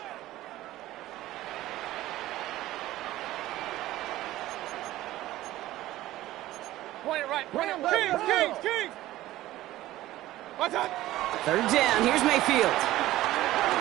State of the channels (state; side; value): quieter; left; 15.7 dB